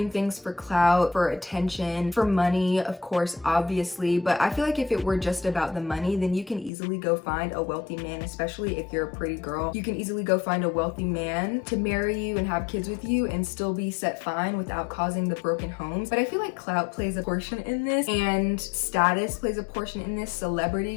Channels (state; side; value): drops out; right; at 6.7 s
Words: things for clout, for attention, for money, of course, obviously. But I feel like if it were just about the money, then you can easily go find a wealthy man, especially if you're a pretty girl. You can easily go find a wealthy man to marry you and have kids with you and still be set fine without causing the broken homes. But I feel like clout plays a portion in this, and status plays a portion in this,